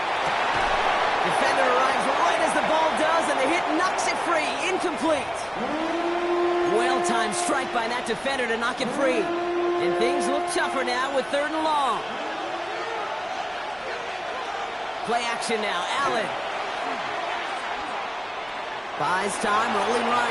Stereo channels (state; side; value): identical; both; correlation 1.00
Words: Defender arrives right as the ball does, and the hit knocks it free. Incomplete. Well-timed strike by that defender to knock it free. And things look tougher now with 3rd and long. Play action now. Allen. Buys time, rolling